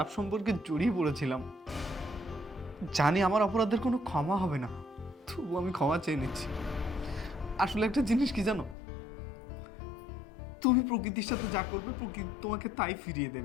সম্পর্কে জড়িয়ে পড়েছিলাম। জানি আমার অপরাধের কোনো ক্ষমা হবে না, তবু আমি ক্ষমা চেয়ে নিচ্ছি। আসলে একটা জিনিস কি জানো, তুমি প্রকৃতির সাথে যা করবে প্রকৃতি তোমাকে তাই ফিরিয়ে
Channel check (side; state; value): right; drops out; at 8.8 s